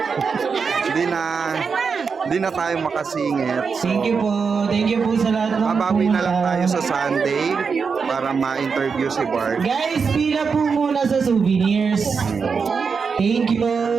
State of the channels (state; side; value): quieter; left; 5.5 dB